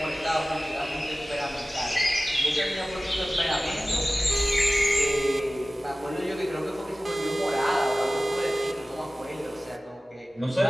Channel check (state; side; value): normal; both; correlation 0.97